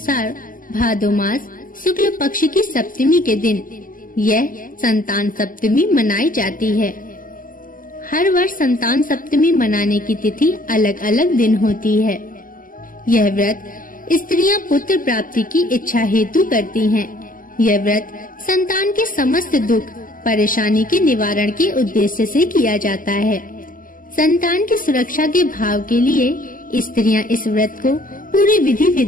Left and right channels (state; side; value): late; right; 0.40 ms